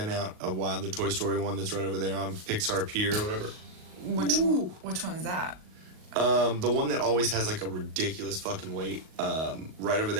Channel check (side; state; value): left; late; 38 ms